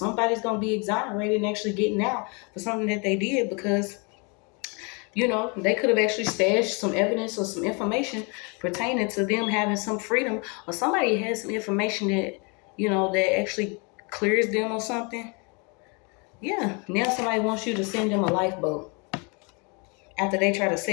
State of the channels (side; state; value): right; quieter; 32.5 dB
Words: going to be exonerated and actually getting out for something that they did because, you know, they could have actually stashed some evidence or some information pertaining to them having some freedom, or somebody has some information that, you know, that actually clears them or something. Yeah, now somebody wants you to send them a lifeboat after they try to